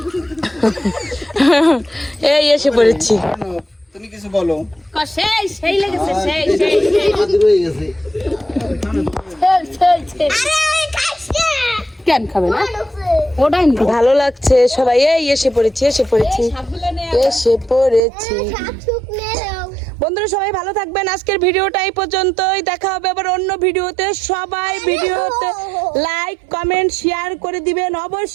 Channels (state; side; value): drops out; left; at 18.0 s